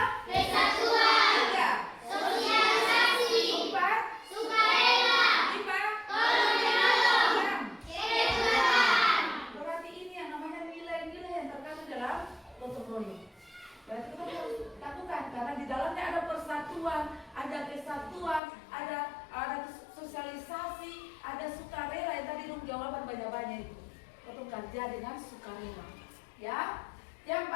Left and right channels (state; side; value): drops out; right; at 18.4 s